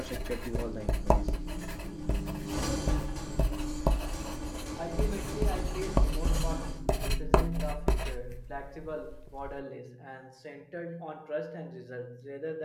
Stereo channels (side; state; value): both; identical; correlation 1.00